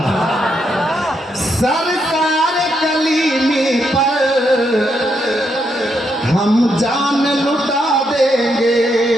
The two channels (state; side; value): normal; both; correlation 0.79